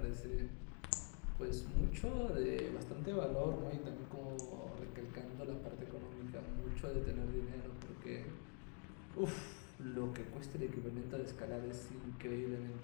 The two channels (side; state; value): right; quieter; 39.4 dB